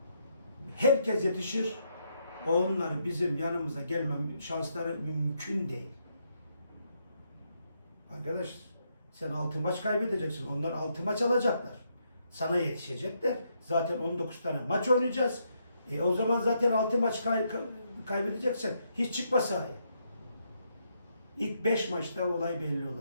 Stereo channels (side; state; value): both; inverted; correlation -0.77